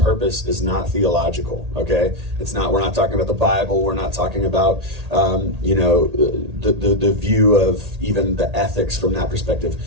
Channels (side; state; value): left; late; 1.8 ms